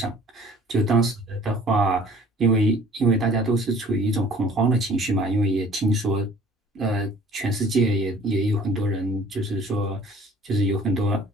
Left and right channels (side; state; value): both; normal; correlation 0.51